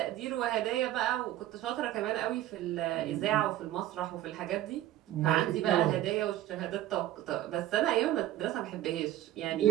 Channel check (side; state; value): left; quieter; 13.6 dB